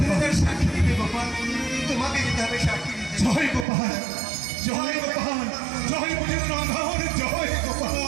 হবে তার সাক্ষী দিতে গোপাল, তোমাকে যেতে হবে সাক্ষী দিতে। জয় গোপাল, জয় গোপাল, জয় গজেন্দ্র নন্দন, জয়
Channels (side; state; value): left; drops out; at 3.7 s